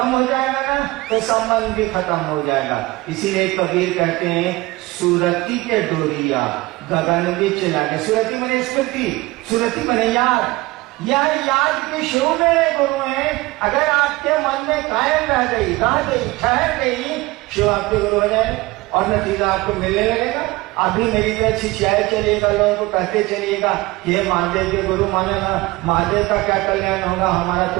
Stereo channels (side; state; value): left; quieter; 20.8 dB